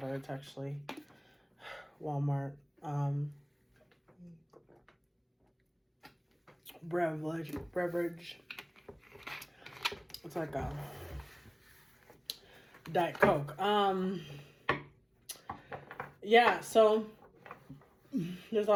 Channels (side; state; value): both; identical; correlation 1.00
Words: it's actually Walmart. Beverage. It's like a Diet Coke. Yeah, so there's a